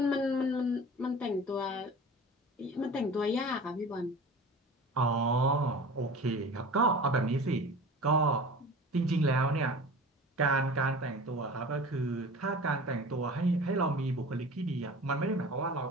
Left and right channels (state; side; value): normal; both; correlation 0.38